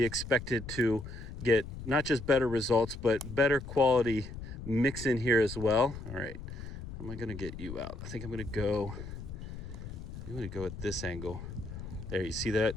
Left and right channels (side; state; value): left; noise; rumble, 10 dB below the sound